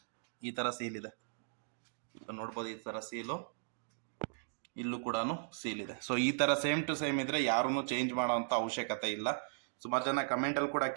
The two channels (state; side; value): silent; left; digital silence